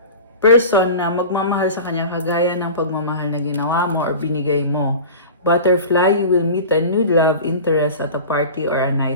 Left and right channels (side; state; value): both; inverted; correlation -0.35